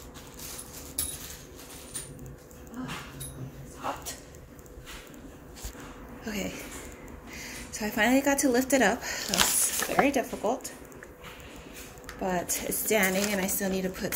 Oh, it's hot. Okay, so I finally got to lift it up. That was very difficult, but it's standing, and I still need to put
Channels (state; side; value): identical; both; correlation 1.00